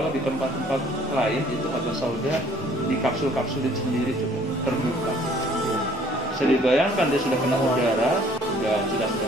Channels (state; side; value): normal; both; correlation 0.58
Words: di tempat-tempat lain itu haba sauda di kapsul-kapsulin sendiri coba terbuka. Bisa dibayangkan dia sudah kena udara, sudah